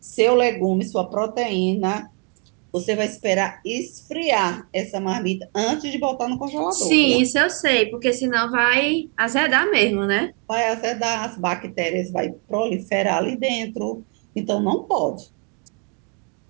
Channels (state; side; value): quieter; left; 37.2 dB